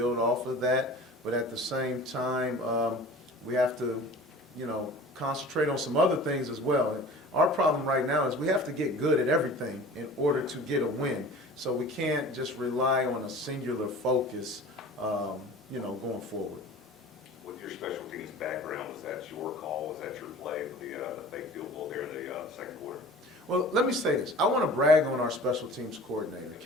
off of that, but at the same time, we have to, concentrate on some other things as well. Our problem right now is we have to get good at everything in order to get a win. So we can't just rely on a singular focus, going forward. With your special teams background, was that your call? Was that your play for the fake field goal there in the second quarter? Well, let me say this. I want to brag on our special teams coordinator,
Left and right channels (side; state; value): both; normal; correlation 0.41